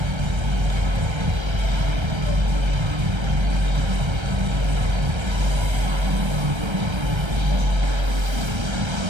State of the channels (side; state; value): left; late; 1.3 ms